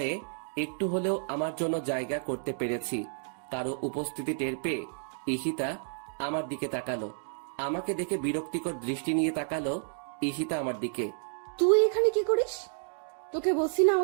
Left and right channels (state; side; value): silent; left; digital silence